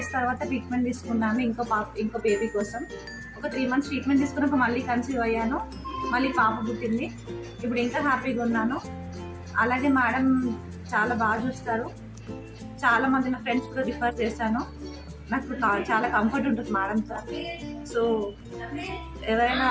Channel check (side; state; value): both; identical; correlation 1.00